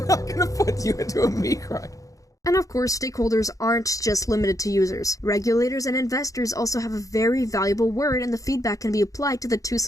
not gonna put you into a meat grinder. And of course, stakeholders aren't just limited to users. Regulators and investors also have a very valuable word, and the feedback can be applied to the two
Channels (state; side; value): late; right; 0.16 ms